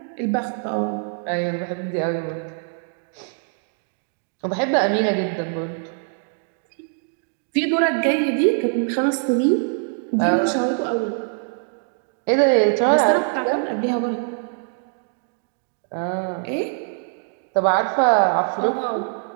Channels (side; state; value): left; silent; 58 dB below the other